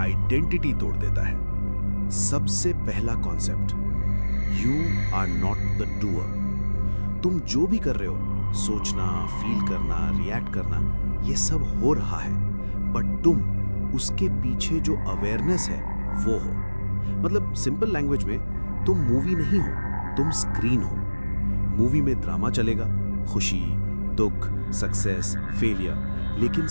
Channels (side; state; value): both; inverted; correlation -1.00